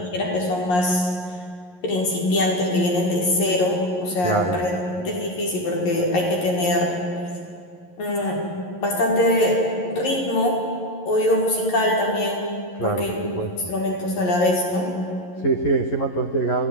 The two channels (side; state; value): right; late; 11 ms